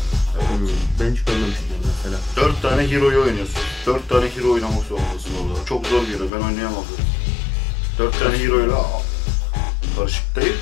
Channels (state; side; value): drops out; right; at 6.3 s